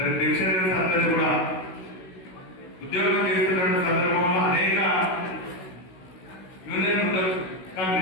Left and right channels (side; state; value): right; late; 16 ms